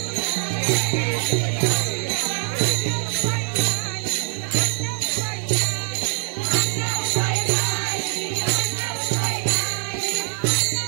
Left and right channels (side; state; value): left; silent; digital silence